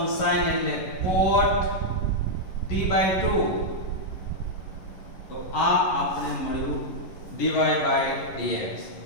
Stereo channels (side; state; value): right; late; 11 ms